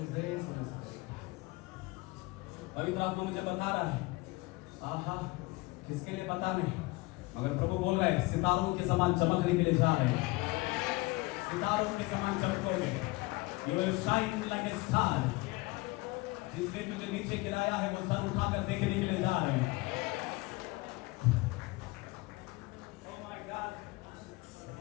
पवित्र आत्मा मुझे बता रहा है, आहा किसके लिए पता नहीं, मगर प्रभु बोल रहे हैं सितारों के समान चमकने के लिए जा रहे हैं। सितारों के समान चमकोगे। You will shine like a star. जिसने तुझे नीचे गिराया है वो सर उठाकर देखने के लिए जा रहे हैं। Oh my God,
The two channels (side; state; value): right; quieter; 23.1 dB